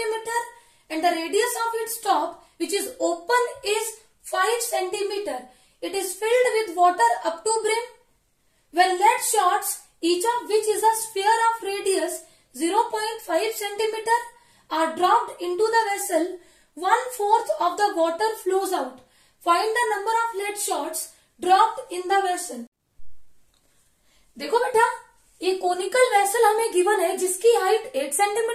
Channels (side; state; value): both; identical; correlation 1.00